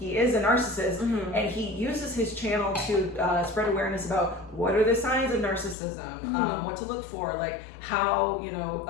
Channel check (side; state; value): right; drops out; at 5.8 s